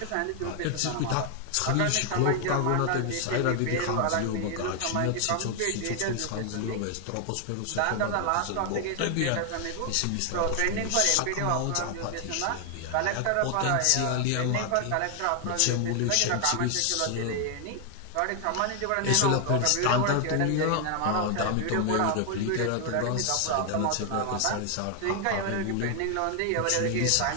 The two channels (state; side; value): different; both; correlation 0.00